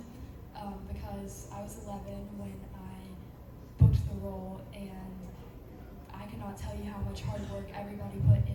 because I was 11 when I booked the role, and I cannot tell you how much hard work everybody put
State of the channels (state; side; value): identical; both; correlation 1.00